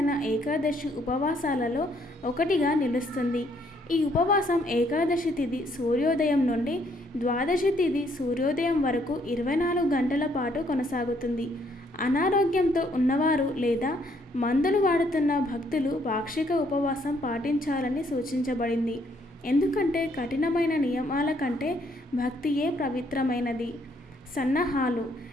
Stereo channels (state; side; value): normal; both; correlation 0.68